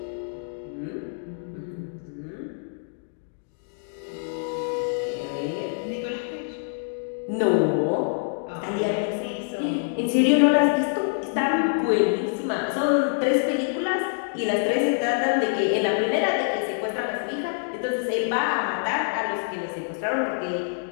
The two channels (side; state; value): right; silent; digital silence